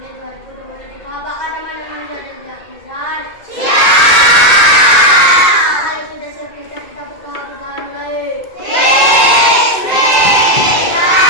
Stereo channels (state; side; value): late; right; 2.3 ms